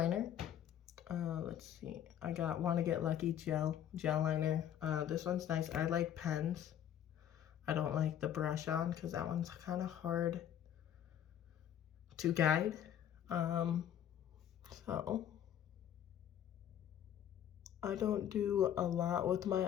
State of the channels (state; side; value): quieter; right; 10.1 dB